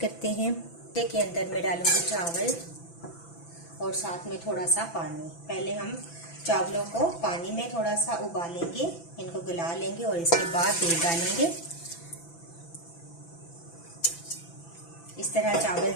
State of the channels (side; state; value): right; late; 6.0 ms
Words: हैं। के अंदर मैं डालूंगी चावल और साथ में थोड़ा सा पानी। पहले हम चावलों को पानी में थोड़ा सा उबालेंगे, इनको गला लेंगे और इसके बाद दूध डालेंगे। इस तरह चावल